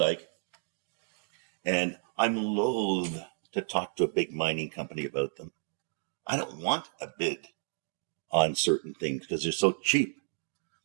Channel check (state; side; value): silent; left; digital silence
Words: And I'm loath to talk to a big mining company about them. I don't want a bid on certain things because they're so cheap.